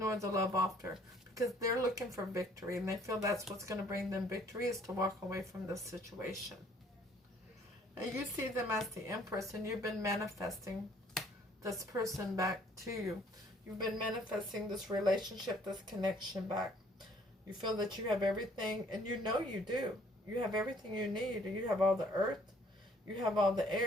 the love offer, because they're looking for victory, and they feel that's what's going to bring them victory, is to walk away from this situation. And you see them as the Empress, and you've been manifesting this person back to you. You've been manifesting this relationship, this connection back. You feel that you have everything, and you know you do. You have everything you need. You have all the earth, you have all the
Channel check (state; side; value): normal; both; correlation 0.60